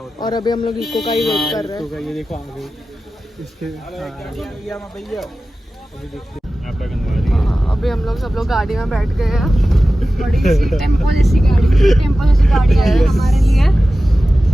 है। और अभी हम लोग इको का ही वेट कर रहे हैं। ये देखो आ गई इसके। अभी हम लोग सब लोग गाड़ी में बैठ गए हैं, बड़ी सी टेम्पो जैसी गाड़ी है हमारे लिए।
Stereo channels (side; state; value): both; normal; correlation 0.95